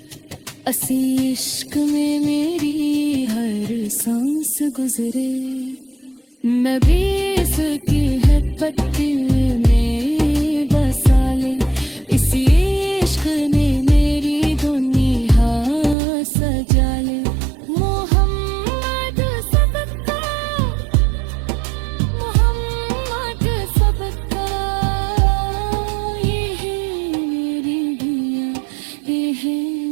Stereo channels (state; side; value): drops out; left; at 16.0 s